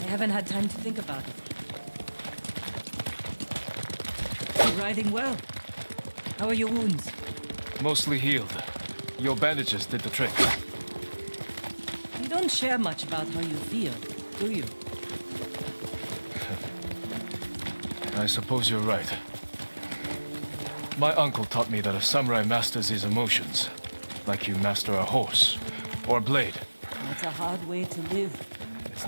haven't had time to think about it. You're riding well. How are your wounds? Mostly healed. Your bandages did the trick. You don't share much about how you feel, do you? I suppose you're right. My uncle taught me that a samurai masters his emotions, like you master a horse or a blade. That's a hard way to live. It's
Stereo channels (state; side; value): inverted; both; correlation -1.00